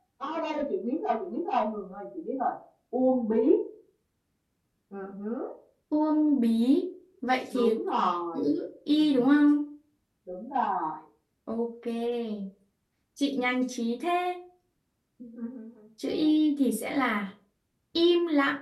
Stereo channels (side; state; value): both; identical; correlation 1.00